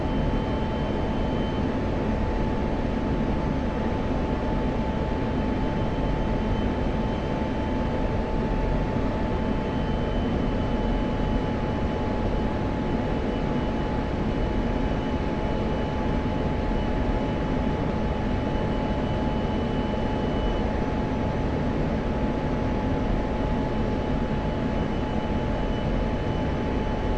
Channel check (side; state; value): both; identical; correlation 1.00